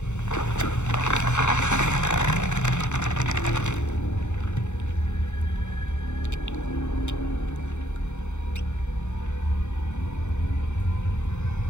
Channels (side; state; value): right; late; 0.83 ms